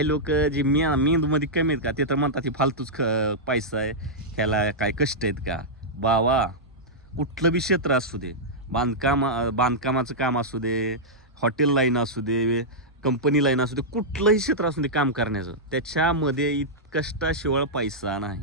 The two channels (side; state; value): both; normal; correlation -0.10